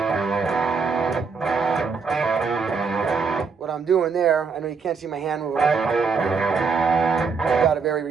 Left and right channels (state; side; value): quieter; left; 5.1 dB